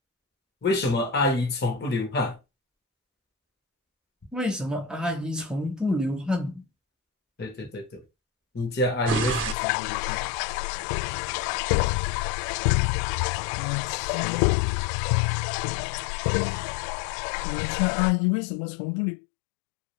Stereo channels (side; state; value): right; drops out; at 9.6 s